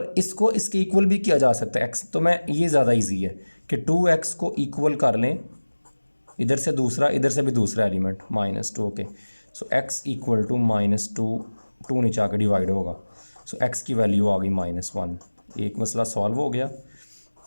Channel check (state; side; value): inverted; both; correlation -1.00